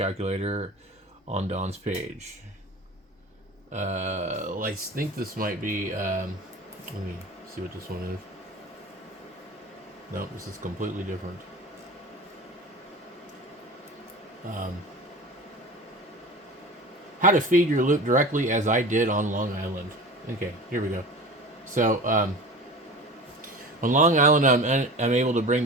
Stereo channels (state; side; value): normal; both; correlation 0.35